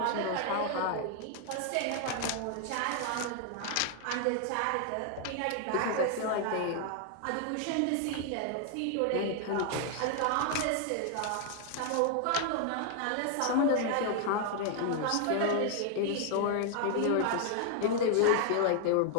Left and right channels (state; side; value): different; both; correlation 0.00